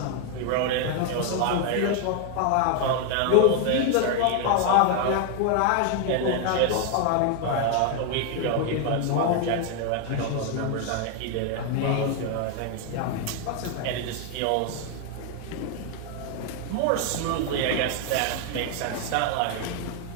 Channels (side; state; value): both; different; correlation 0.00